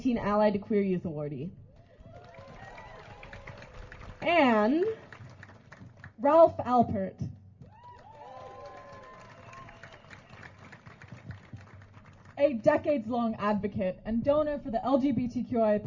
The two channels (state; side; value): identical; both; correlation 1.00